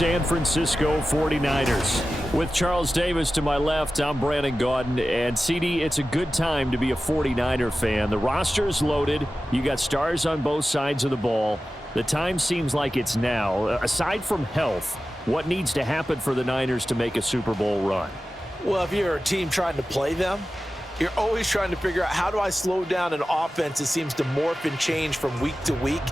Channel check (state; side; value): normal; both; correlation 0.94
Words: Francisco 49ers. With Charles Davis to my left, I'm Brandon Gaudin, and CD, it's a good time to be a 49er fan. The roster is loaded. You got stars on both sides of the ball. The time seems like it's now. Aside from health, what needs to happen for the Niners to make a Super Bowl run? Well, if you're a team trying to play them, you're always trying to figure out, how do I slow down an offense that seems to morph and change from week to week